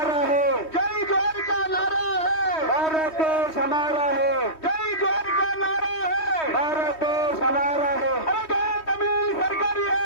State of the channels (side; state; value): right; late; 3.2 ms